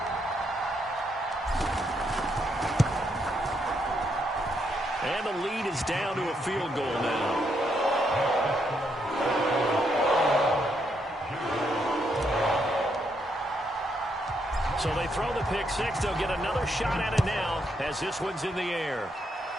And the lead is down to a field goal now. So they throw the pick six. They'll get another shot at it now as this one's in the air.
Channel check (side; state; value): both; normal; correlation 0.77